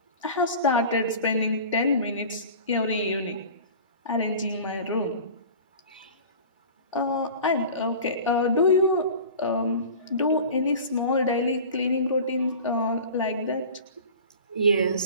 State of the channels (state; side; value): inverted; both; correlation -0.39